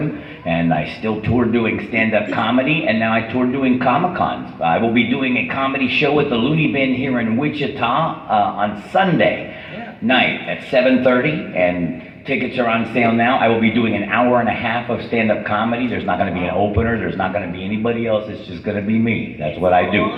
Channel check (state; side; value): identical; both; correlation 1.00